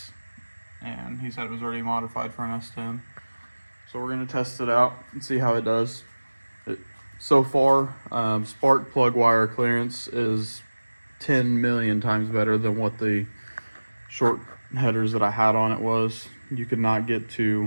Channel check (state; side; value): inverted; both; correlation -1.00